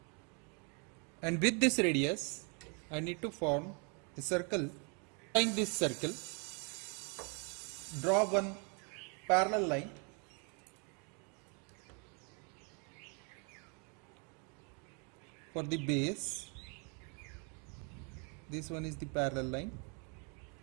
and with this radius I need to form a circle. Following this circle, draw one parallel line for the base. This one is the parallel line,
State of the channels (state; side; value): quieter; left; 36.1 dB